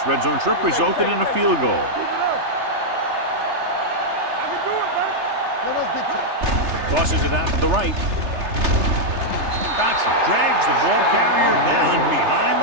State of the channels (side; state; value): left; late; 3.3 ms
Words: red zone trip resulted in a field goal. Tosses it out to the right. Dotson drags the ball carrier down behind